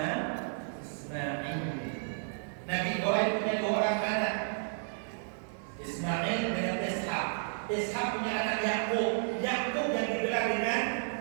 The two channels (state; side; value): silent; left; digital silence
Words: Nabi Ibrahim punya 2 orang anak, Ismail dengan Ishak. Ishak punya anak Yakub. Yakub yang digelar dengan